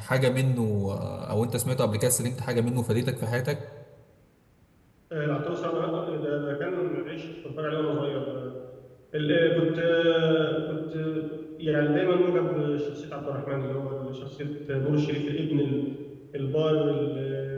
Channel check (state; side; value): identical; both; correlation 1.00